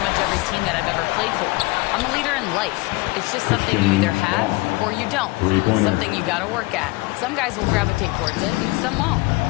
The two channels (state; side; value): quieter; right; 23.9 dB